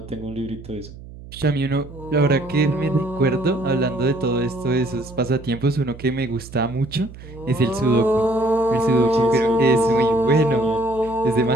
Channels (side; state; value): right; noise; hum, 16 dB below the sound